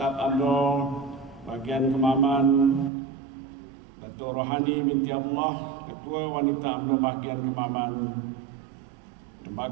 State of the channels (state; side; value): drops out; left; at 2.9 s